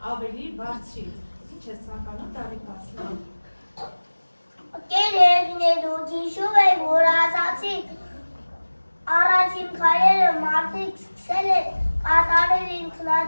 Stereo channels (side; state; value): both; inverted; correlation -1.00